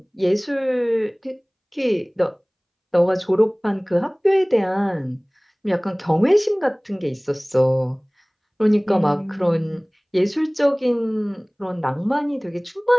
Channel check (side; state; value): both; identical; correlation 1.00